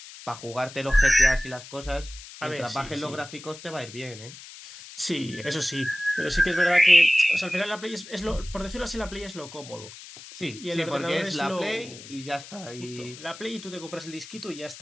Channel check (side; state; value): left; noise; hiss, 16 dB below the sound